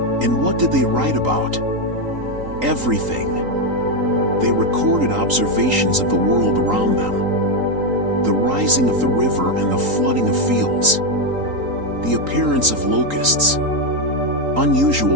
And what did they write about? Everything. They recorded observations of the world around them. The rising of the river and the flooding of fields. The appearance of locusts.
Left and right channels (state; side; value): late; left; 3.8 ms